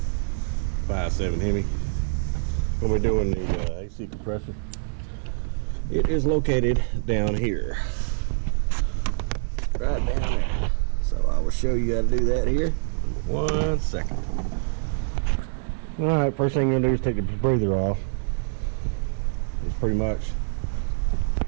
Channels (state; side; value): silent; left; digital silence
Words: 5.7 Hemi. When we're doing the AC compressor, it is located down here, right down there. So I will show you how to do that here. 1 second. All right, first thing you're gonna do is take the breather off. It's pretty much